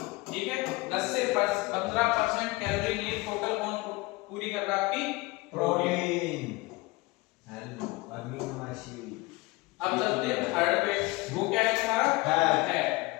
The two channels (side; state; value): right; quieter; 22.5 dB